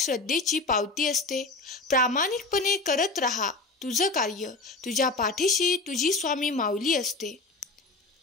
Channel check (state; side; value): quieter; right; 3.4 dB